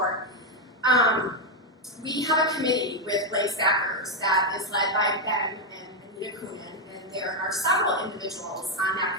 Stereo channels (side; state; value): both; normal; correlation 0.03